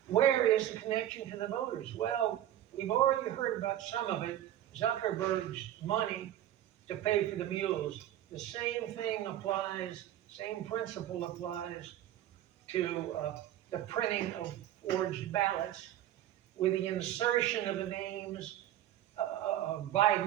Where is the connection to the voters? Well, we've already heard about some of it. Zuckerberg's money to pay for the mules. The same thing applies, same principle applies to the printing of forged ballots with the insertion of the names of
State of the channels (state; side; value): quieter; left; 12.4 dB